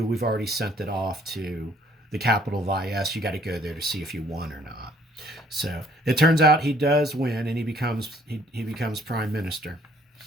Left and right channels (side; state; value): both; normal; correlation 0.61